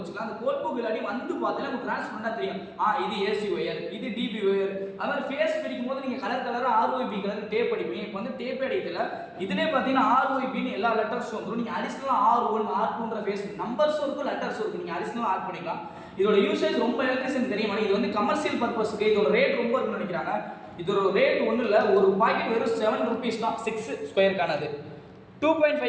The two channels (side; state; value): both; identical; correlation 1.00